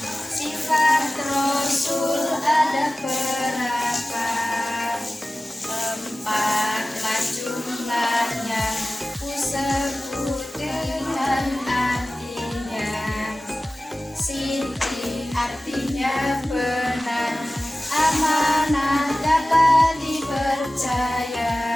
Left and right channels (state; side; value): normal; both; correlation 0.97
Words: sifat Rasul ada berapa? 4-lah jumlahnya, ku sebut dengan artinya. Siti artinya benar, amanah dapat dipercaya.